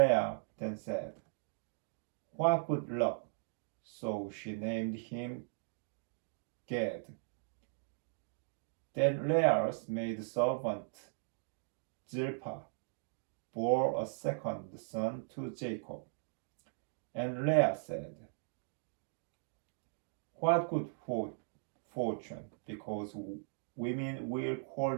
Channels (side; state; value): left; silent; digital silence